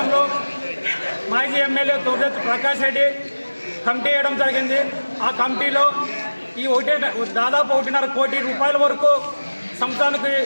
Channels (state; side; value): inverted; both; correlation -1.00